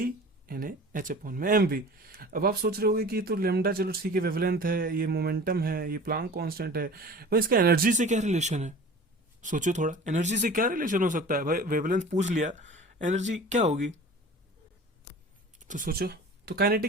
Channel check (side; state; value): both; normal; correlation 0.40